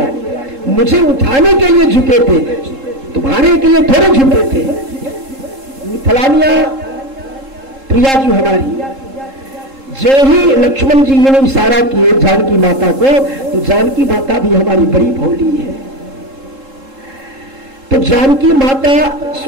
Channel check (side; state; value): left; late; 3.7 ms